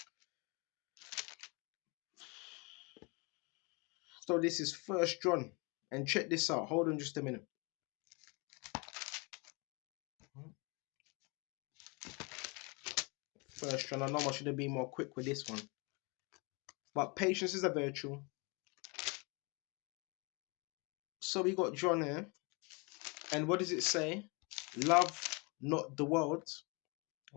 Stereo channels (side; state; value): right; quieter; 30.2 dB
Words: So this is First John, and check this out. Hold on just a minute. First John. I know I should have been more quick with this one, but patience is a virtue. So we got John here, and what does it say? Love not the world.